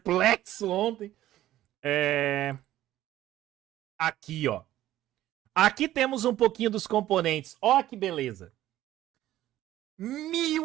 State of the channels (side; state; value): left; quieter; 13.9 dB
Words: ontem. Aqui, ó. Aqui temos um pouquinho dos componentes. Ó que beleza.